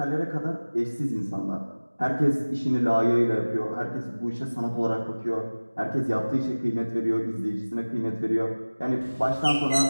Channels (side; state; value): both; inverted; correlation -1.00